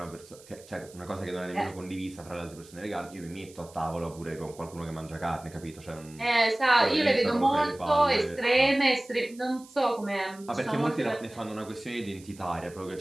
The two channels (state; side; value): noise; right; hiss, 22 dB below the sound